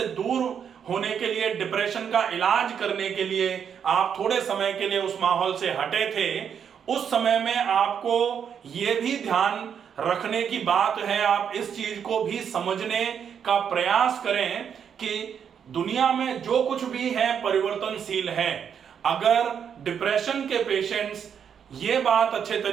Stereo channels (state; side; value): quieter; left; 7.8 dB